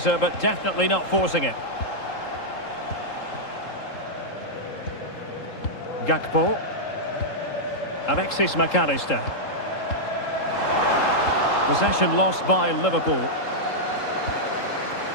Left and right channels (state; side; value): late; right; 3.7 ms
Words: but definitely not forcing it. Gakpo. Alexis McAllister. Possession lost by Liverpool.